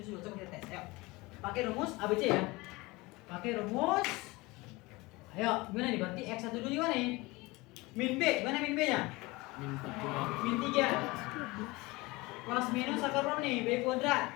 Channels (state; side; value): quieter; right; 22.7 dB